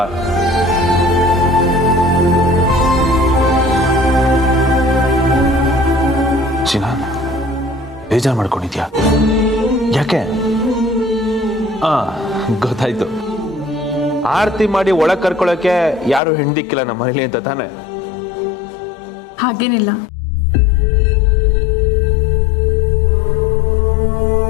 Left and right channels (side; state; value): right; drops out; at 16.2 s